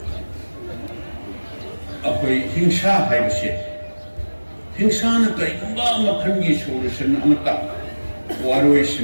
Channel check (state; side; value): inverted; both; correlation -1.00